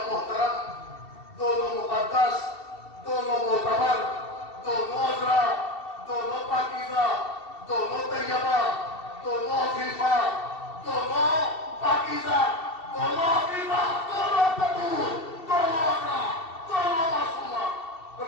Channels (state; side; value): late; right; 2.7 ms